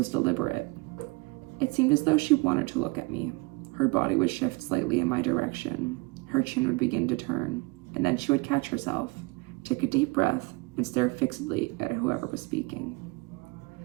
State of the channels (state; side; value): quieter; left; 25.5 dB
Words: deliberate. It seemed as though she wanted to look at me. Her body would shift slightly in my direction. Her chin would begin to turn, and then she would catch herself, take a deep breath, and stare fixedly at whoever was speaking.